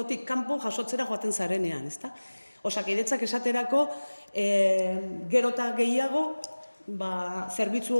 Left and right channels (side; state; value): both; inverted; correlation -1.00